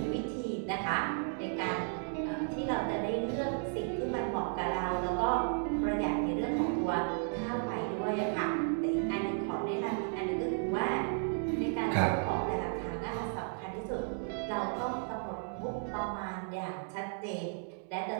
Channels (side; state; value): left; silent; 55 dB below the other